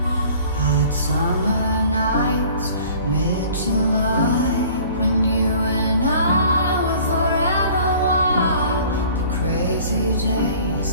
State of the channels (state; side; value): inverted; both; correlation -0.49